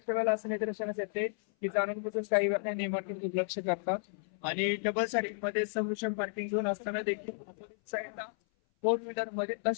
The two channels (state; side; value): silent; right; 56 dB below the other